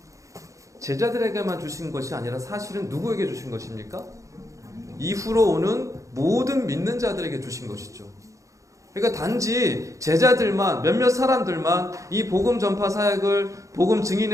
제자들에게만 주신 것이 아니라 사실은 누구에게 주신 것입니까? 이후로 오는 모든 믿는 자들에게 주신 것이죠. 그러니까 단지 제자들만, 몇몇 사람들만 이 복음 전파 사역을, 복음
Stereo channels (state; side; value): late; left; 0.15 ms